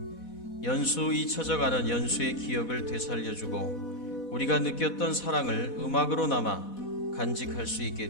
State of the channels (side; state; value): right; late; 4.1 ms